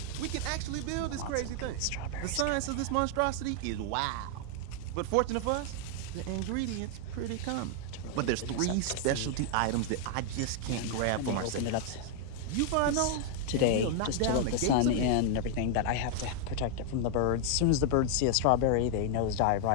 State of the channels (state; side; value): different; both; correlation 0.00